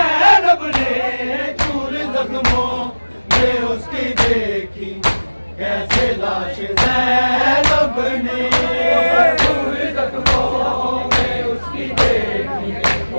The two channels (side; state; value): both; inverted; correlation -1.00